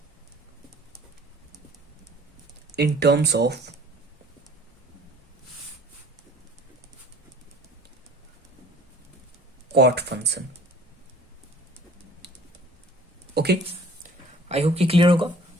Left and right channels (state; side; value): normal; both; correlation 0.51